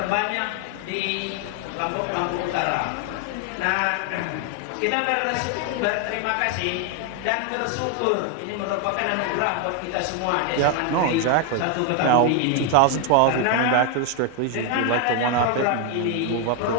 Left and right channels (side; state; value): both; different; correlation 0.01